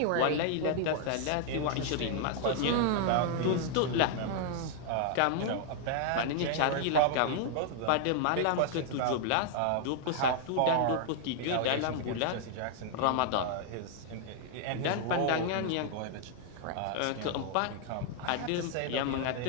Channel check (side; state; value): both; different; correlation -0.01